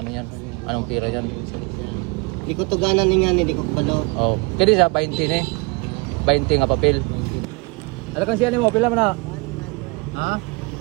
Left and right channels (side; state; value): left; quieter; 28.7 dB